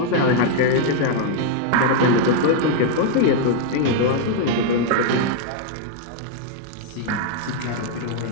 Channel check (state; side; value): different; both; correlation 0.00